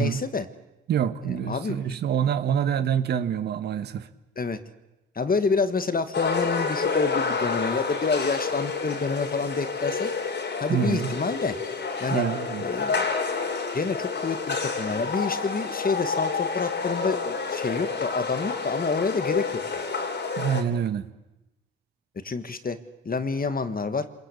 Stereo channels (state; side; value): normal; both; correlation 0.25